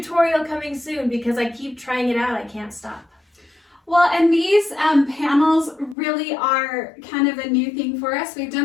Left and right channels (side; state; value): right; drops out; at 6.0 s